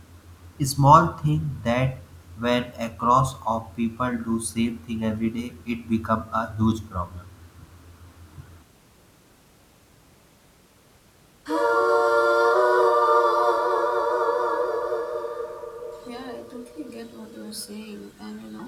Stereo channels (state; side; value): identical; both; correlation 1.00